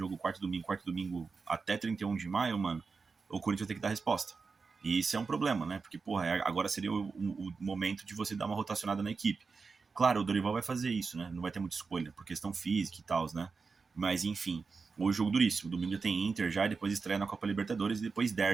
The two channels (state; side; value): quieter; left; 4.7 dB